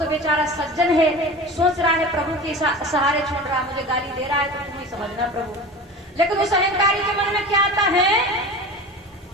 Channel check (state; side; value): normal; both; correlation 0.33